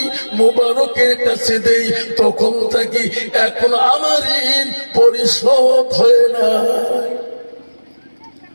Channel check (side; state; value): both; inverted; correlation -1.00